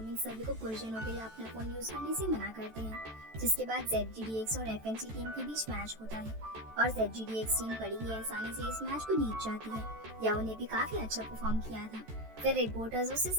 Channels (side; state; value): left; late; 14 ms